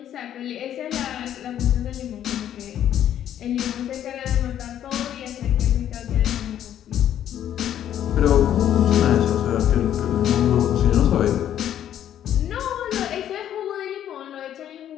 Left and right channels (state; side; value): quieter; right; 10.7 dB